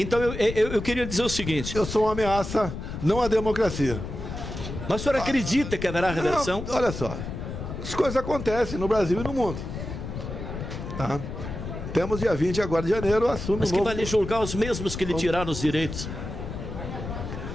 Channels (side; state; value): left; noise; rumble, 7 dB below the sound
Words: eu queria dizer o seguinte. Eu sou uma ameaça, não à democracia. Mas o senhor acredita que haverá reversão? Não, olha só, as coisas acontecem no Brasil e no mundo. Tá? Temos dia 20 agora de janeiro, assume Mas que vai lhe julgar os mesmos que lhe tiraram os direitos?